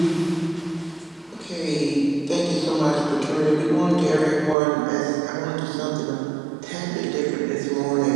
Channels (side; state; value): left; drops out; at 4.5 s